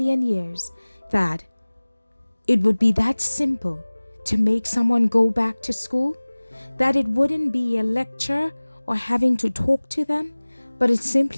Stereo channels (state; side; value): inverted; both; correlation -1.00